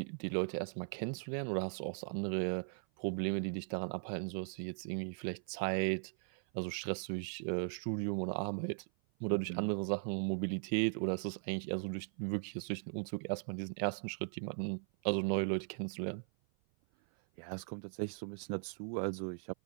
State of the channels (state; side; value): silent; left; 52 dB below the other